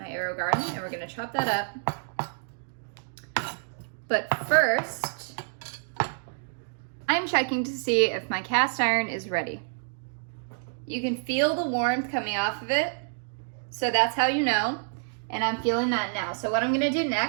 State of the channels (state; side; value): silent; left; digital silence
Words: AeroGarden, and we're gonna chop that up. But first, I'm checking to see if my cast iron is ready. You can feel the warmth coming off of it, so that's how you know, and I'm feeling that now. So what I'm gonna do